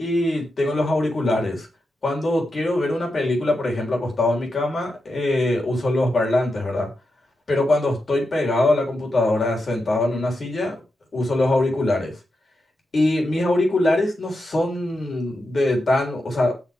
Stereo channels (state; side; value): normal; both; correlation 0.87